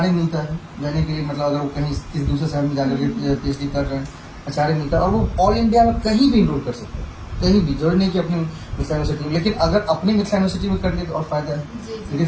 मिलता है जाने के लिए, मतलब अगर वो कहीं किसी दूसरे शहर में जाकर के पीएचडी कर रहे हैं एचआरए मिलता है और वो ऑल इंडिया में कहीं भी इनरोल कर सकते हैं, कहीं भी, जरूरी नहीं कि अपनी मिथिला यूनिवर्सिटी में। लेकिन अगर अपनी मिथिला यूनिवर्सिटी में करने तो और फायदा है क्योंकि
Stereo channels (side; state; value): both; identical; correlation 1.00